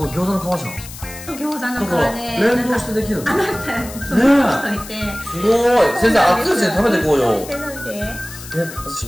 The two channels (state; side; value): noise; left; hiss, 14 dB below the sound